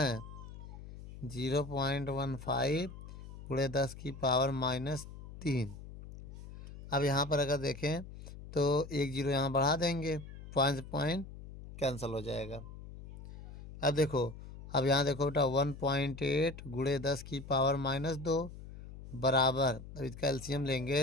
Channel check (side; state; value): left; noise; hum, 14 dB below the sound